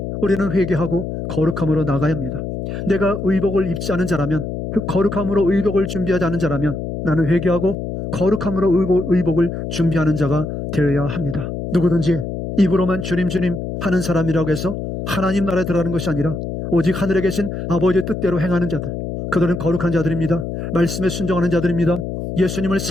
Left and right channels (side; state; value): left; noise; hum, 5 dB below the sound